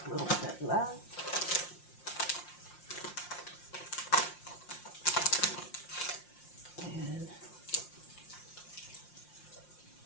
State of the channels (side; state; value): right; late; 5.7 ms